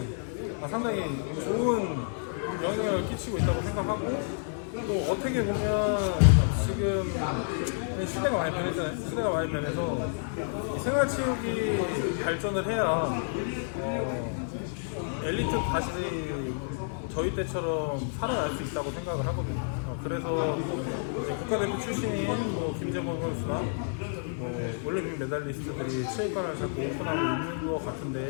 상당히 좋은 영향을 끼치고 있다고 생각하고, 또 어떻게 보면 지금 시대가 많이 변했잖아요. 시대가 많이 변해서 생활체육이 발전을 해야 엘리트 다시 저희 때처럼 살아날 수 있다고 생각을 하거든요. 그래서 이제 국가대표 출신인 김재범 선수나 올림픽 메달리스트들이 체육관을 자꾸 오픈하고 있는 것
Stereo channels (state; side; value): silent; right; digital silence